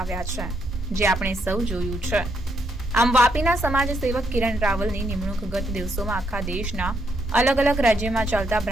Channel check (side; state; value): both; normal; correlation 0.76